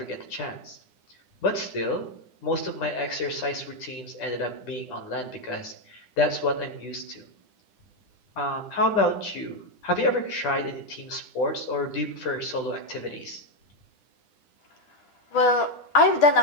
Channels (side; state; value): right; late; 10 ms